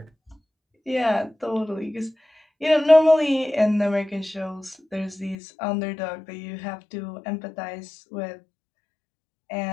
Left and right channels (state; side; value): drops out; right; at 5.4 s